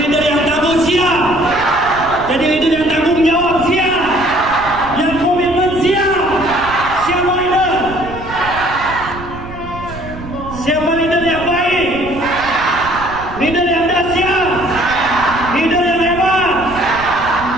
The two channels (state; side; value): noise; right; rumble, 13 dB below the sound